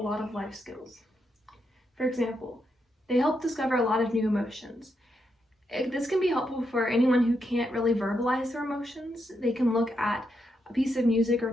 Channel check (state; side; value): normal; both; correlation 0.82